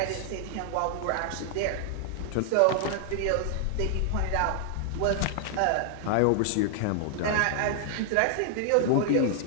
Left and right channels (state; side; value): different; both; correlation 0.00